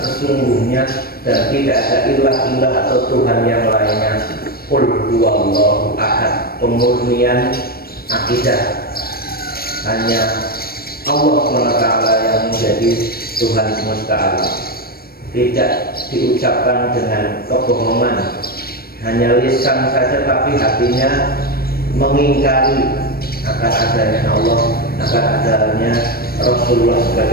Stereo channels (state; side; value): late; right; 0.44 ms